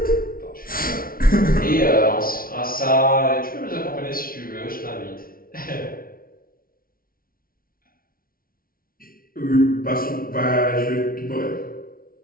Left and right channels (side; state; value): right; late; 0.43 ms